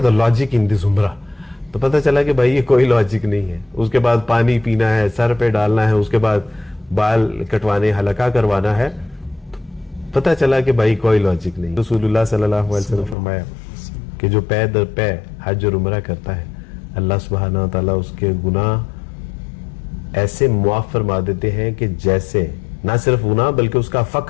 the logic in دس عمرہ. تو پتہ چلا کہ بھائی یہ کوئی لاجک نہیں ہے. اس کے بعد پانی پینا ہے، سر پہ ڈالنا ہے، اس کے بعد بال کٹوانے، حلقہ کروانا ہے. پتہ چلا کہ بھائی کوئی لاجک نہیں. رسول اللہ صلی اللہ علیہ وسلم فرمایا کہ جو پے در پے حج اور عمرہ کرتا ہے، اللہ سبحانہ وتعالی اس کے گناہ ایسے معاف فرما دیتے ہیں کہ جیسے نہ صرف گناہ بلکہ اس کا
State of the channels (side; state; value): right; drops out; at 13.2 s